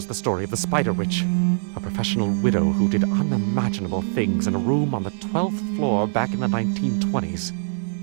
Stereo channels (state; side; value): silent; left; digital silence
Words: the story of the Spider Witch, a professional widow who did unimaginable things in a room on the 12th floor back in the 1920s.